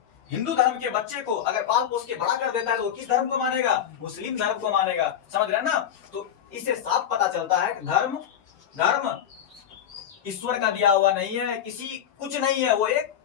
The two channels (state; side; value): quieter; right; 9.6 dB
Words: हिंदू धर्म के बच्चे को अगर पाल पोस के बड़ा कर देता है तो वो किस धर्म को मानेगा? मुस्लिम धर्म को मानेगा। समझ रहे हैं ना? तो इससे साफ पता चलता है कि धर्म ईश्वर का दिया हुआ नहीं है, किसी कुछ नहीं है, वो एक